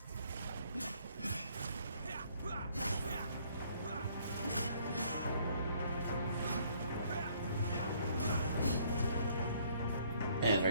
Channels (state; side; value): inverted; both; correlation -0.63